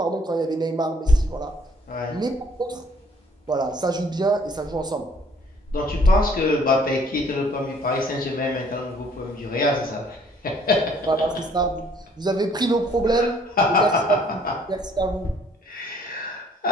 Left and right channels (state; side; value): normal; both; correlation 0.60